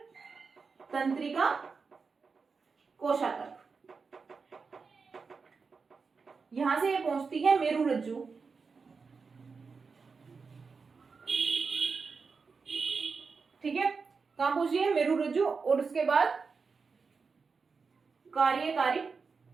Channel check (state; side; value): quieter; left; 4.9 dB